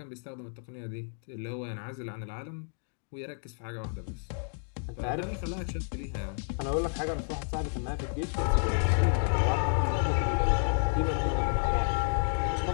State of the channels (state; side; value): silent; right; 57 dB below the other